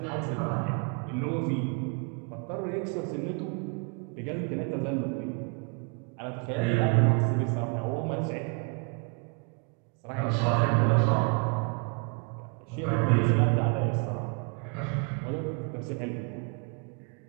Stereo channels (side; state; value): left; quieter; 35.1 dB